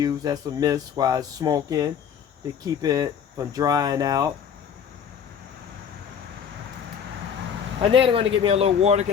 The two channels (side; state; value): right; quieter; 7.7 dB